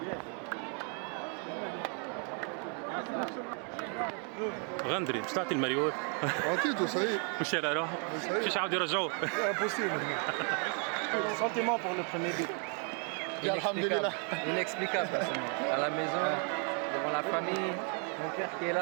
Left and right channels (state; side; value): quieter; left; 39.6 dB